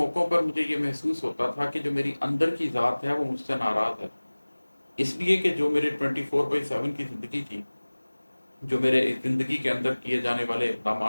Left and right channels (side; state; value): both; inverted; correlation -1.00